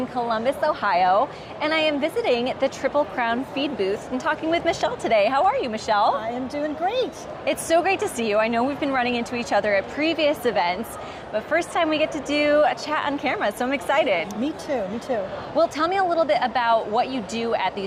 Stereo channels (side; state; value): both; identical; correlation 1.00